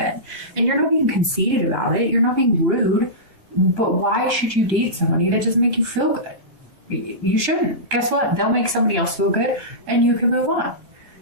And you're not being conceited about it. You're not being rude. But why should you date somebody that doesn't make you feel good? You shouldn't. Guess what? They'll make somebody else feel good, and you can move on.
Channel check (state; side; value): late; left; 3.2 ms